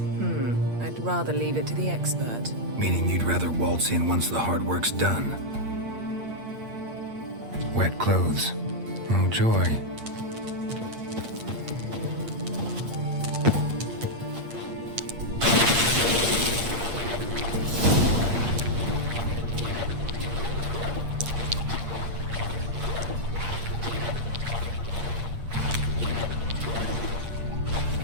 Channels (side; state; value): left; late; 8.6 ms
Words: I'd rather leave it to the expert. Meaning you'd rather waltz in once the hard work's done? Wet clothes. Oh, joy.